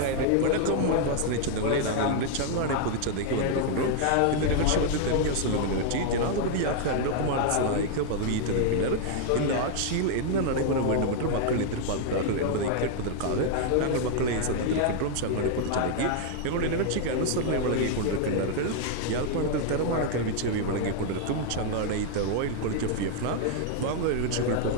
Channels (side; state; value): both; different; correlation 0.00